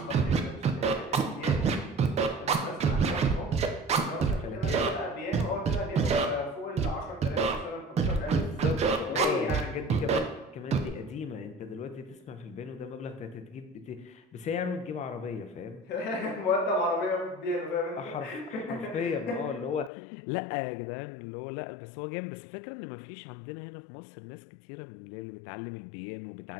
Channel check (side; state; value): right; drops out; at 19.9 s